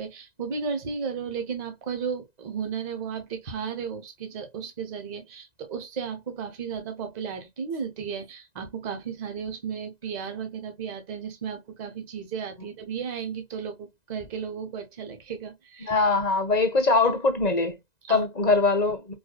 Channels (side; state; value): right; late; 1.9 ms